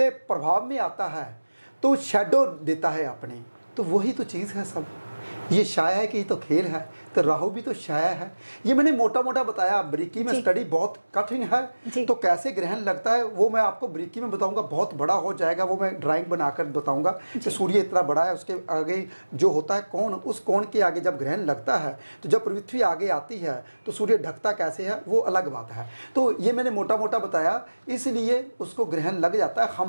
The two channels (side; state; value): both; inverted; correlation -1.00